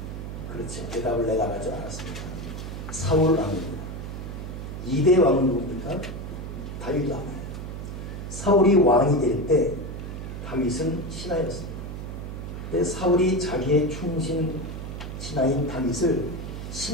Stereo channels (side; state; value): right; noise; hum, 7 dB below the sound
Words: 그렇죠. 대답을 내가 하지 않았습니다. 사울 왕입니다. 2대 왕은 누굽니까? 다윗 왕이에요. 사울이 왕이 될 때 다윗은 신하였습니다. 근데 사울이 자기의 충신 신하인 다윗을